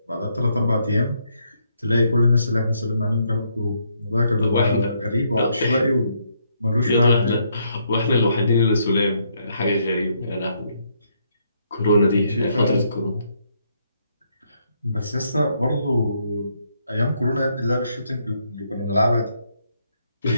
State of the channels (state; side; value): inverted; both; correlation -0.74